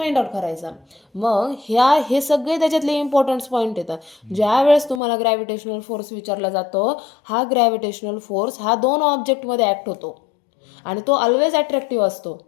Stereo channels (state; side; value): drops out; right; at 5.0 s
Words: आउट करायचं. मग हे सगळे त्याच्यातले इम्पॉर्टंट पॉईंट येतात. ज्या वेळेस तुम्हाला ग्रॅव्हिटेशनल फोर्स विचारला जातो, हा ग्रॅव्हिटेशनल फोर्स हा दोन ऑब्जेक्टमध्ये ॲक्ट होतो आणि तो ऑलवेज अट्रॅक्टिव्ह असतो.